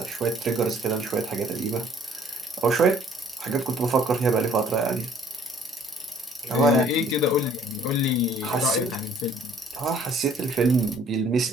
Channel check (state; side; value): normal; both; correlation 0.58